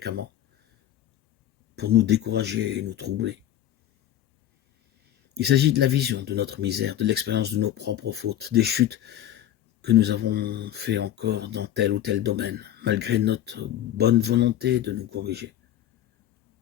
pour nous décourager et nous troubler. Il s'agit de la vision de notre misère, de l'expérience de nos propres fautes, des chutes que nous avons fait encore dans tel ou tel domaine, malgré notre bonne volonté de nous corriger.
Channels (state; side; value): quieter; right; 11.8 dB